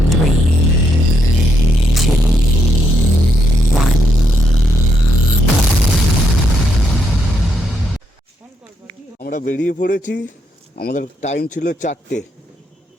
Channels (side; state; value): both; normal; correlation 0.77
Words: 3, 2, 1. আমরা বেরিয়ে পড়েছি। আমাদের time ছিল 4টে,